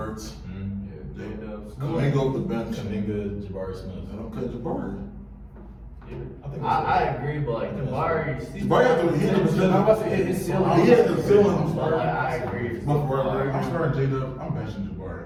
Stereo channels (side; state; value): both; identical; correlation 1.00